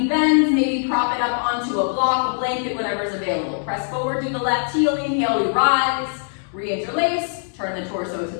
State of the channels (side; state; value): right; silent; 64 dB below the other